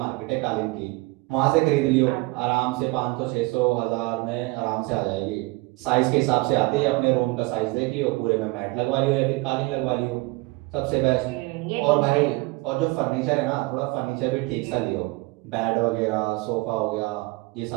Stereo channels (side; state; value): left; quieter; 23.9 dB